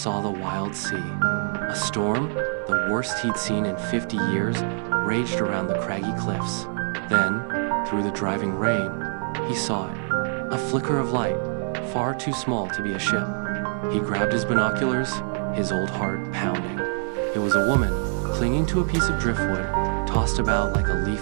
the wild sea. A storm, the worst he'd seen in 50 years, raged around the craggy cliffs. Then, through the driving rain, he saw it. A flicker of light, far too small to be a ship. He grabbed his binoculars, his old heart pounding. It was a woman, clinging to a piece of driftwood, tossed about like a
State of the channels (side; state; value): left; silent; 62 dB below the other